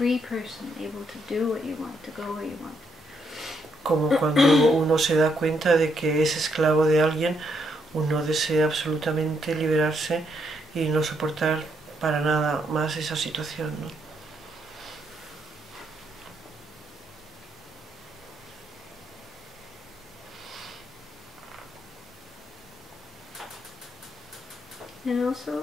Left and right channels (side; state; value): both; normal; correlation 0.76